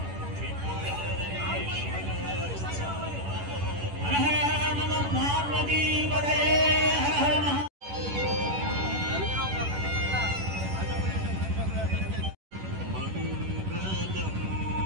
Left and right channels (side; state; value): left; late; 11 ms